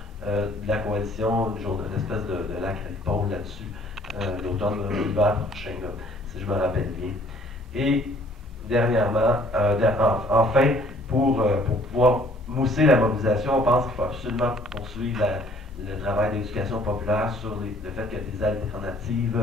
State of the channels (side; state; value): both; normal; correlation 0.58